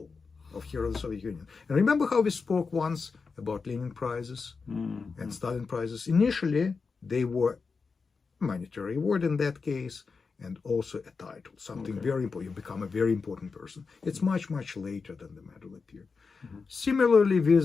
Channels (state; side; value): quieter; right; 4.8 dB